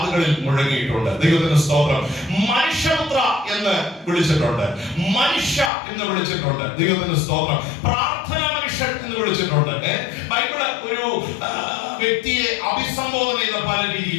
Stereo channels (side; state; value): right; drops out; at 5.7 s